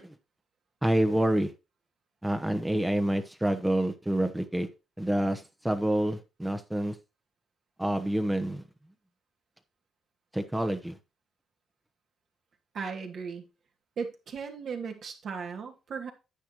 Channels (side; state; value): both; normal; correlation 0.97